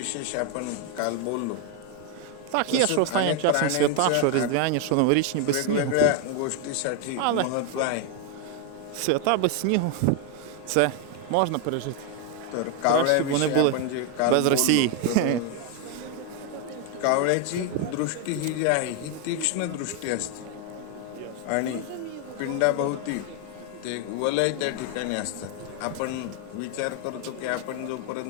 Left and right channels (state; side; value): different; both; correlation 0.01